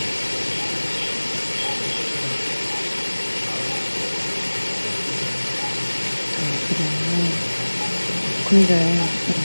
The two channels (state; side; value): inverted; both; correlation -1.00